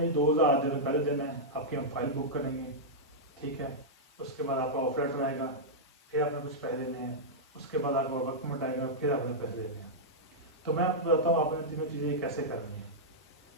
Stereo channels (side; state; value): both; normal; correlation -0.09